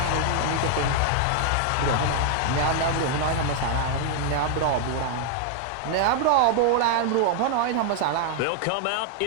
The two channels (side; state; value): both; different; correlation 0.00